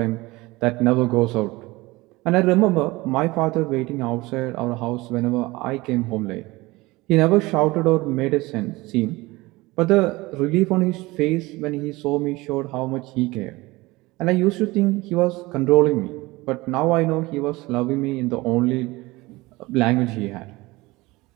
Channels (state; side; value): quieter; left; 21.2 dB